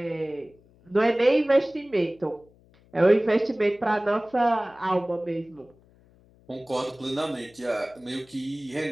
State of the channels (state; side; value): noise; left; hum, 29 dB below the sound